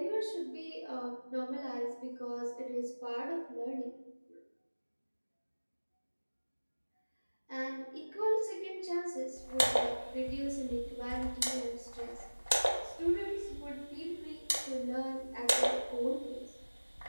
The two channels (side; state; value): both; inverted; correlation -1.00